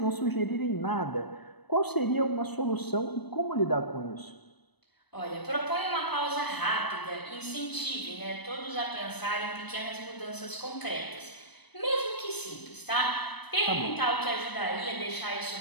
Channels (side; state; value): right; late; 0.99 ms